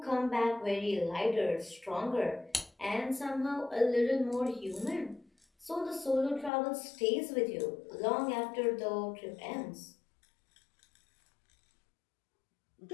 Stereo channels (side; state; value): right; drops out; at 6.5 s